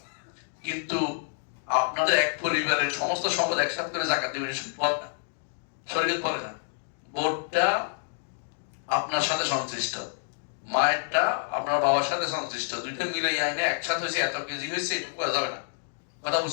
কিন্তু আপনাদের এক পরিবারের সমস্ত সম্পদ একসাথে করে যাকাত দিবেন, সম্পদ না, শরীয়ত বলে না। বোর্ডটা আপনার সাথে সংশ্লিষ্ট, মায়েরটা আপনার বাবার সাথে সংশ্লিষ্ট, দুইটা মিলে আইনে একসাথে হয়েছে, এত কেজি হয়েছে, এটা করা যাবে না। কথা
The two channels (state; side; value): silent; right; digital silence